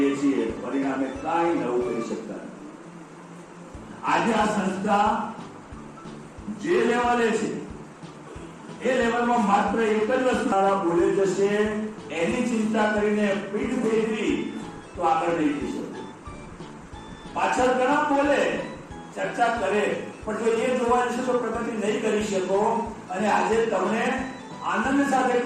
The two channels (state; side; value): identical; both; correlation 1.00